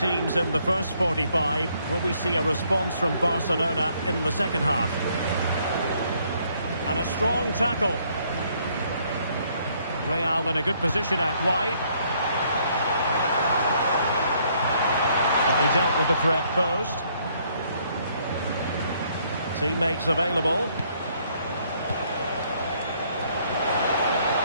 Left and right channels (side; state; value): both; inverted; correlation -0.67